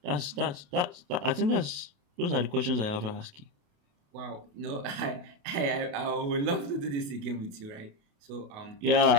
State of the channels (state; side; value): late; left; 28 ms